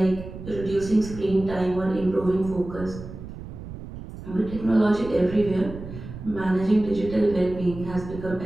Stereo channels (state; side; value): noise; right; rumble, 12 dB below the sound